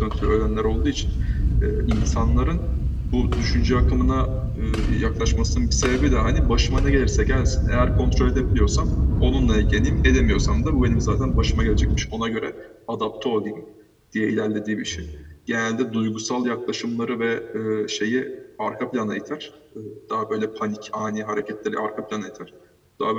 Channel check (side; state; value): both; identical; correlation 1.00